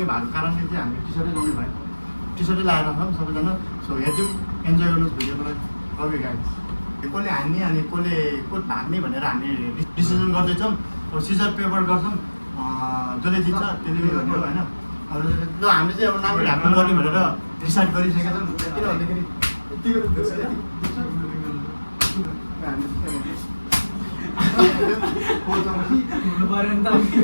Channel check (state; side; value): inverted; both; correlation -1.00